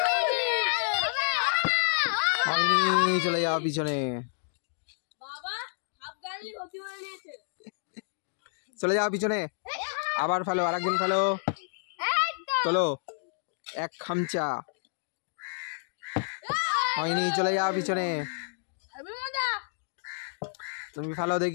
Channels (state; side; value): silent; right; digital silence